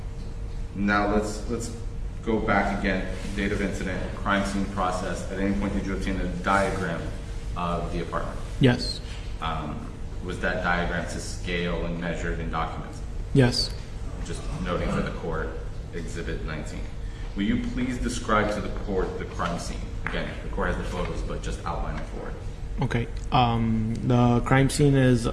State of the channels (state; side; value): identical; both; correlation 1.00